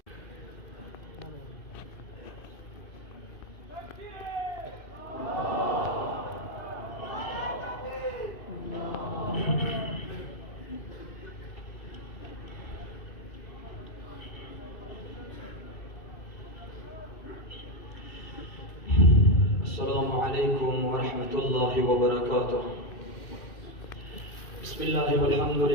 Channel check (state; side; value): late; right; 2.6 ms